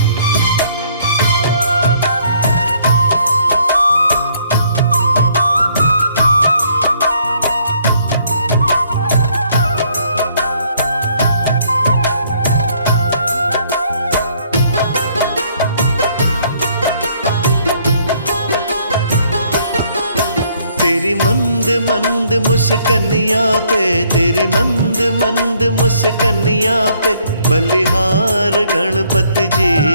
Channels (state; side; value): inverted; both; correlation -0.65